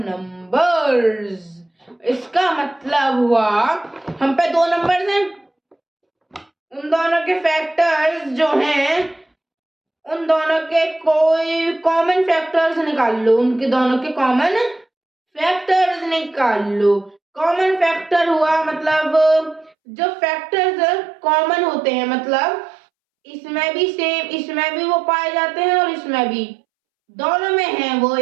इसका मतलब हुआ, हम पे 2 नंबर्स हैं, उन दोनों के फैक्टर्स जो हैं, उन दोनों के कोई कॉमन फैक्टर्स निकाल लो, उनके दोनों के कॉमन फैक्टर्स निकाल लो। कॉमन फैक्टर हुआ मतलब जो फैक्टर्स कॉमन होते हैं, मतलब इसमें भी सेम, इसमें भी वो पाए जाते हैं और इसमें भी, दोनों में है, वो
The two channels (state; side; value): drops out; left; at 19.7 s